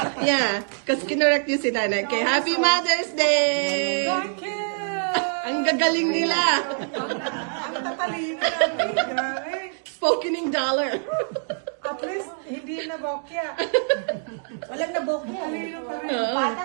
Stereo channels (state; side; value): silent; left; digital silence